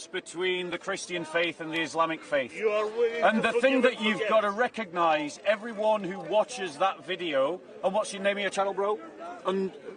between the Christian faith and the Islamic faith. And the thing that you've got to recognise, everyone who watches that video, and what's your name of your channel, bro? And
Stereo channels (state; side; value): identical; both; correlation 1.00